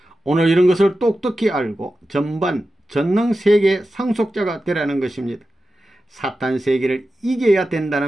오늘 이런 것을 똑똑히 알고 전능 세계 상속자가 되라는 것입니다. 사탄 세계를 이겨야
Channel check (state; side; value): normal; both; correlation 0.92